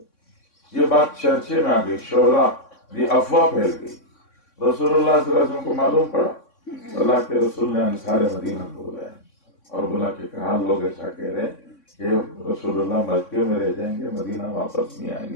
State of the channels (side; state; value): right; late; 3.6 ms